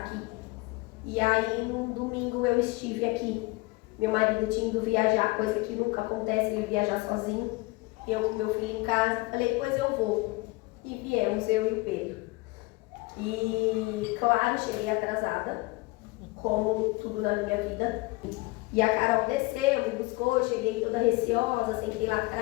E aí, num domingo, eu estive aqui. Meu marido tinha ido viajar, coisa que nunca acontece, ele viajar sozinho. Eu com meu filho em casa, falei, pois eu vou. E viemos, eu e o Pedro. E, claro, cheguei atrasada, como tudo na minha vida. E a Carol desceu, me buscou, eu cheguei toda receosa, sentei lá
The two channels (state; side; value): quieter; right; 22.8 dB